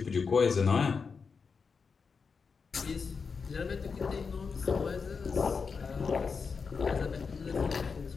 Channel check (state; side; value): quieter; right; 5.3 dB